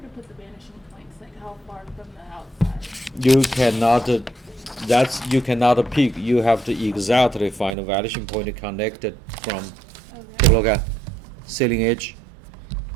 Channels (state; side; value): drops out; left; at 7.8 s